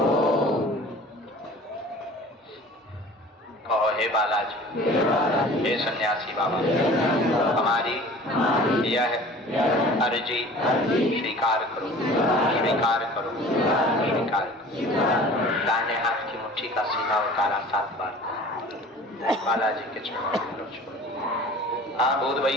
कहो हे बालाजी, हे सन्यासी बाबा, हमारी यह अर्जी स्वीकार करो, स्वीकार करो, स्वीकार करो। दाहिने हाथ की मुट्ठी का सीधा उतारा 7 बार बालाजी के चरणों में छोड़। हाँ भूत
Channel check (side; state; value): both; normal; correlation 0.44